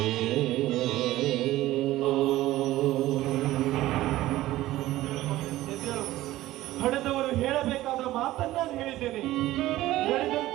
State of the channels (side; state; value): left; quieter; 16.0 dB